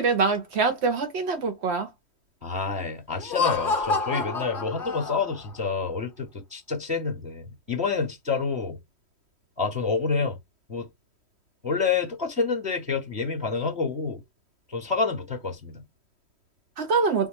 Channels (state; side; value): late; left; 3.1 ms